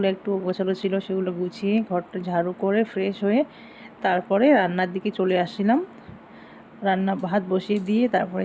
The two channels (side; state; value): both; identical; correlation 1.00